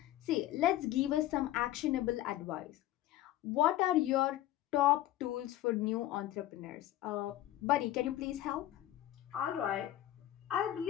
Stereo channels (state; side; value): quieter; right; 14.1 dB